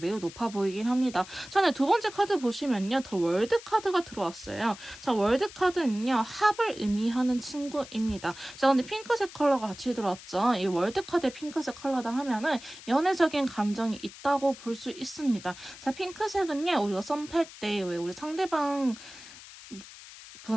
높아 보이긴 합니다. 전에 두 번째 카드 보시면요. 더 월드 카드가 들어왔어요. 자, 월드 카드는요. 합을 의미하는 친구입니다. 자, 근데 핑크색 컬러가 같이 들어왔죠. 이 월드 카드의 핑크색 컬러다 하면은 연애적인 감정이 있다고 볼 수 있습니다. 자, 핑크색은요. 우리가 썸 탈 때 왜 우리 상대방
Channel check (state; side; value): noise; left; hiss, 17 dB below the sound